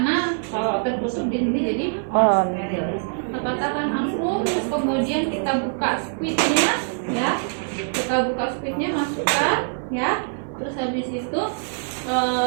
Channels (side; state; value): left; silent; 57 dB below the other